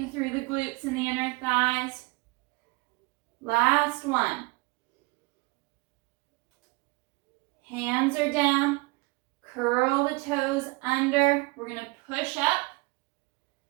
through the glutes and the inner thighs. Last one. Hands are down. Curl the toes under. We're going to push up.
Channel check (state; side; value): quieter; left; 25.6 dB